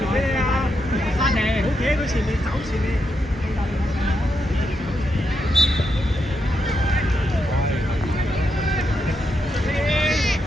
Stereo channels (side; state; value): both; normal; correlation 0.82